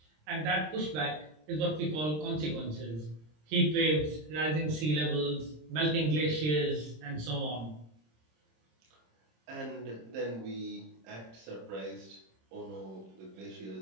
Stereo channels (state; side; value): late; left; 26 ms